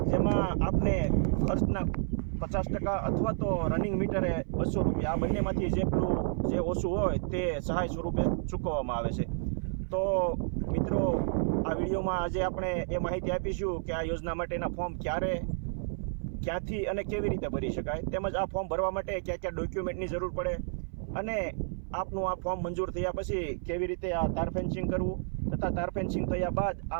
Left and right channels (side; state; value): left; silent; 57 dB below the other